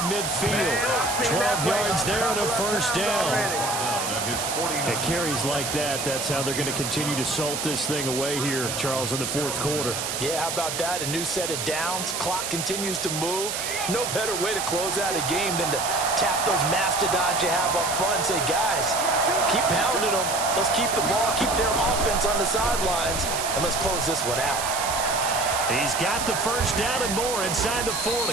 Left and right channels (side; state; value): right; noise; hiss, 3 dB below the sound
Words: midfield. 12 yards there and a first down. It carries like that. That's how they're going to continue to salt this thing away here, Charles, in the fourth quarter. Yeah, how about that? A new set of downs. Clock continues to move. No better way to close out a game than to tap those mastodons you have up front and say, guys, keep pounding them. Let's keep the ball, keep their offense on the sidelines, and let's close this one out. He's got the first down and more inside the 40.